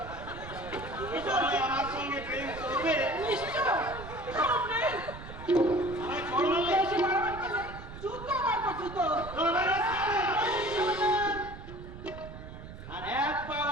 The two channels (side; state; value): right; noise; rumble, 12 dB below the sound